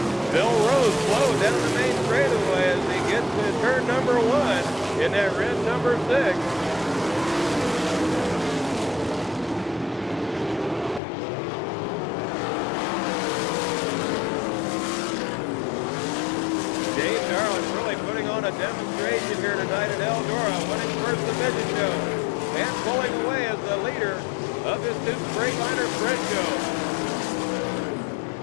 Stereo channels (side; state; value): right; drops out; at 11.0 s